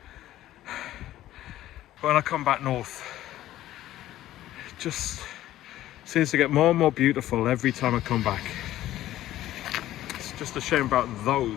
When I come back north, it just seems to get more and more beautiful every time I come back. It's just a shame about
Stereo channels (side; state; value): right; quieter; 14.1 dB